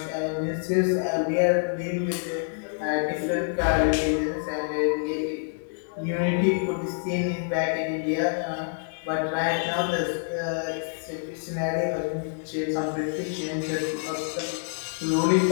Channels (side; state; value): right; silent; digital silence